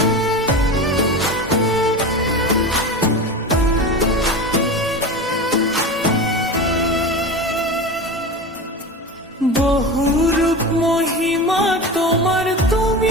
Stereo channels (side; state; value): both; normal; correlation 0.27